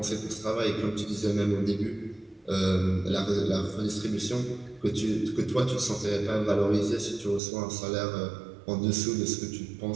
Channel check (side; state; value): left; drops out; at 7.4 s